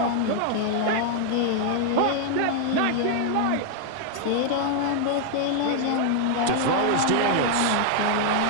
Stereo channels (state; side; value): different; both; correlation 0.00